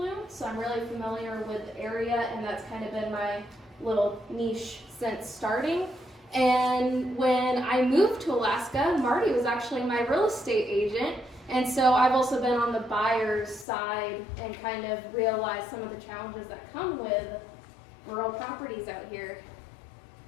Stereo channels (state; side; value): drops out; right; at 13.7 s